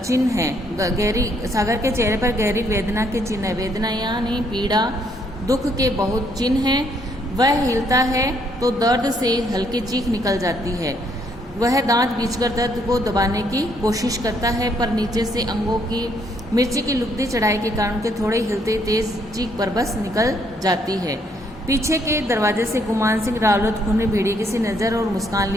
है। सागर के चेहरे पर गहरी वेदना के चिन्ह है। वेदना यानी पीड़ा, दुख के बहुत चिन्ह हैं। वह हिलता है तो दर्द से हल्की चीख निकल जाती है। वह दांत बींचकर दर्द को दबाने की कोशिश करता है, पर नीचे से अंगों की मिर्ची की लुगदी चढ़ाई के कारण के थोड़े हिलते तेज चीख पर बस निकल जाती है। पीछे के दरवाजे से गुमान सिंह रावलत खूनी भेड़िए किसी नज़र और मुस्कान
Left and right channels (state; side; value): normal; both; correlation 0.70